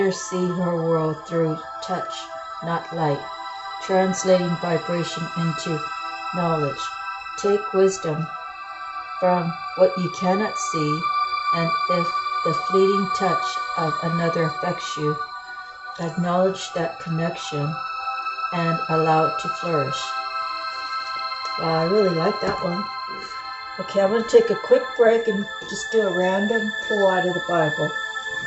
see her world through touch, not light, translating vibration into knowledge. Take wisdom from what you cannot see, and if the fleeting touch of another affects you, acknowledge that connection and allow it to flourish. Wow, I really like that one. Okay, I'm going to take a quick break and just do a random pull out of the Bible.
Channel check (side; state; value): both; identical; correlation 1.00